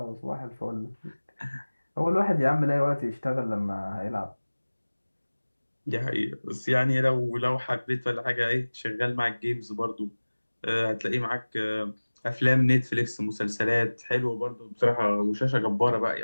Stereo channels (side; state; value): both; inverted; correlation -1.00